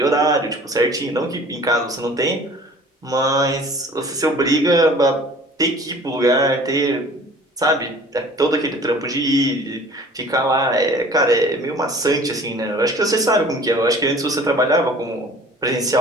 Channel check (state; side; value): normal; both; correlation 0.48